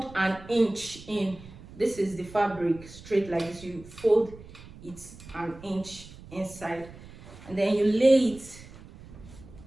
an inch in. This is the fabric straight like this. You fold it an inch inside, and then you lay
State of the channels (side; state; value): right; noise; rumble, 18 dB below the sound